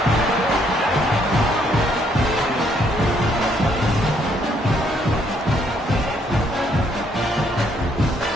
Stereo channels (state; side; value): normal; both; correlation 0.69